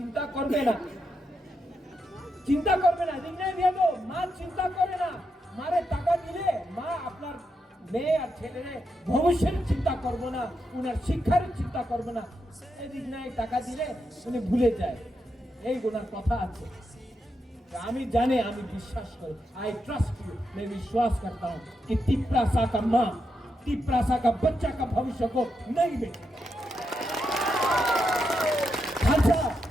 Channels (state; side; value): normal; both; correlation 0.84